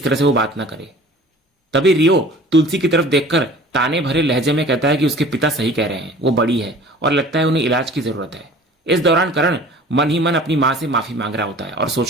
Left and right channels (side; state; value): both; normal; correlation 0.45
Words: तरह से वो बात ना करे। तभी रियो तुलसी की तरफ देखकर ताने भरे लहजे में कहता है कि उसके पिता सही कह रहे हैं, वो बड़ी है और लगता है उन्हें इलाज की जरूरत है। इस दौरान करण मन ही मन अपनी माँ से माफी मांग रहा होता है और